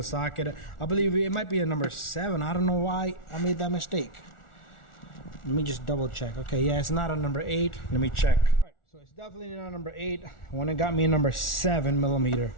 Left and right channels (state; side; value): late; right; 1.4 ms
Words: socket. I believe it might be a number 7. I don't know why I made that mistake. Let me just double check. Okay, yeah, it's not a number 8. Let me check. So it's definitely not number 8. When it got me a number 7 millimeter.